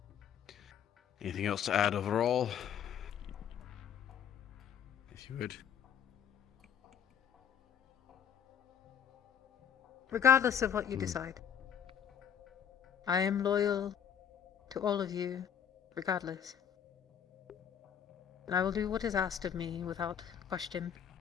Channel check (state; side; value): quieter; right; 8.6 dB